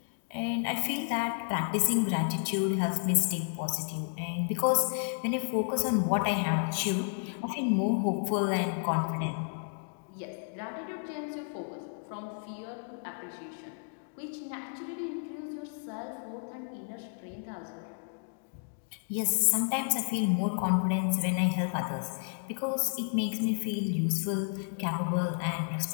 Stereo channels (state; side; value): silent; right; 57 dB below the other